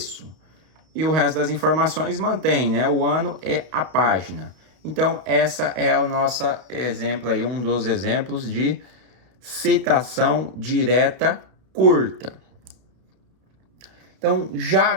E o resto das informações mantém, né? O ano e a página. Então, essa é o nosso exemplo aí, um dos exemplos de citação direta curta. Então, já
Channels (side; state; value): left; late; 32 ms